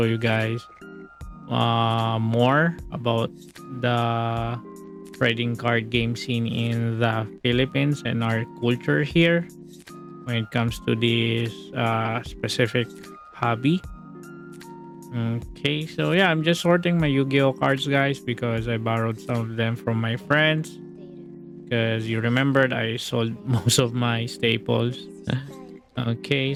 you guys more about the trading card game scene in the Philippines and our culture here when it comes to this specific hobby. Okay, so yeah, I'm just sorting my Yu-Gi-Oh cards, guys, because I borrowed some of them from my friends. Because you remembered I sold most of my staples. Okay,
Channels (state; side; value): identical; both; correlation 1.00